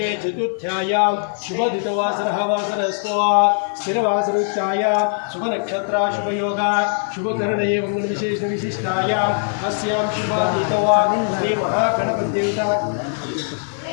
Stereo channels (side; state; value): right; silent; digital silence